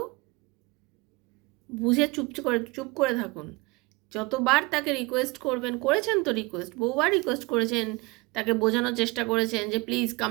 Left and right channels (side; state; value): left; quieter; 25.2 dB